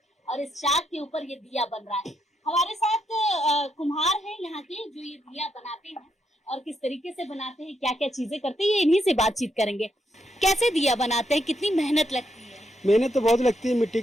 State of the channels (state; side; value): normal; both; correlation 0.79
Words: और इस चाक के ऊपर ये दिया बन रहा है। हमारे साथ कुम्हार हैं यहाँ के जो ये दिया बनाते हैं और किस तरीके से बनाते हैं, क्या क्या चीजें करते हैं, ये इन्हीं से बातचीत करेंगे। कैसे दिया बनाते हैं, कितनी मेहनत लगती है? मेहनत तो बहुत लगती है मिट्टी